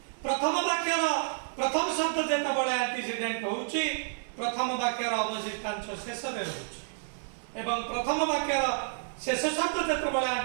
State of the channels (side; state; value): left; silent; 58 dB below the other